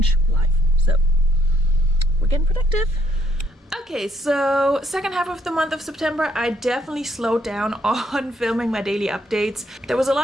live. So we're getting productive. Okay, so second half of the month of September, I definitely slowed down on filming my daily updates. There was a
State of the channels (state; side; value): normal; both; correlation 0.72